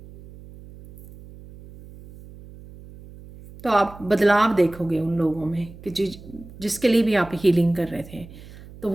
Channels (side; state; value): right; noise; hum, 19 dB below the sound